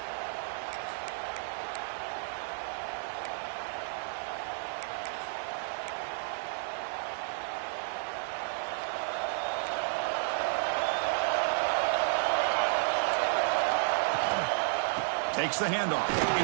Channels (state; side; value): silent; left; digital silence